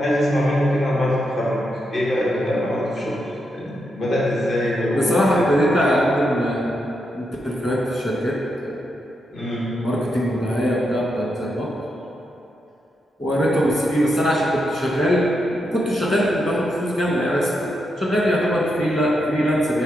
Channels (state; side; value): normal; both; correlation 0.83